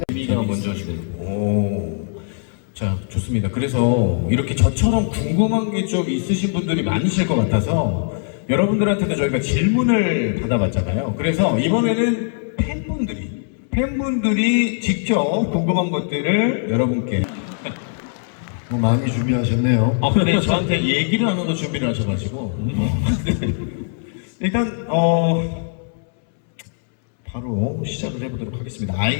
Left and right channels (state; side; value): silent; right; 65 dB below the other